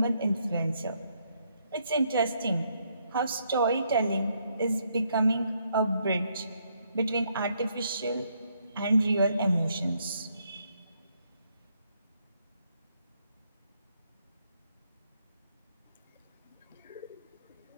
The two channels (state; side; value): inverted; both; correlation -0.73